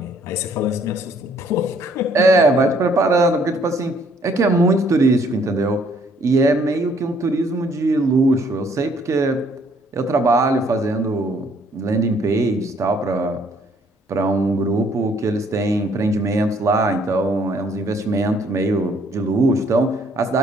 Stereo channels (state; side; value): normal; both; correlation 0.64